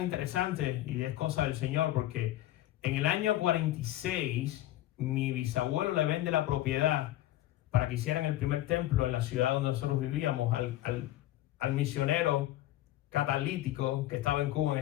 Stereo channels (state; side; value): quieter; right; 14.8 dB